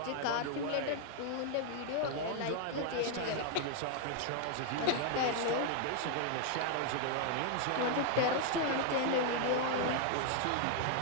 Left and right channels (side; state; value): both; different; correlation 0.00